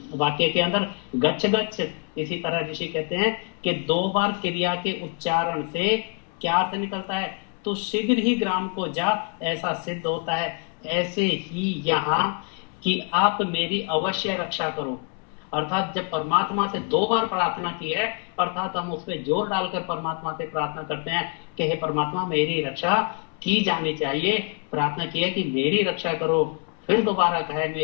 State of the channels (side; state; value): right; quieter; 34.0 dB